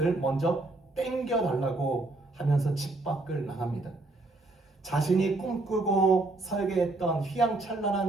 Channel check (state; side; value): quieter; left; 3.0 dB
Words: 먼저 땡겨달라고 하면서 집 밖을 나갑니다. 자신이 꿈꾸고 설계했던